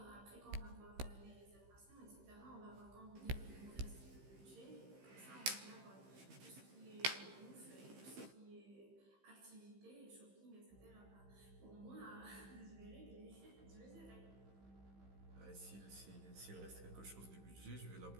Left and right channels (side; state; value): left; late; 15 ms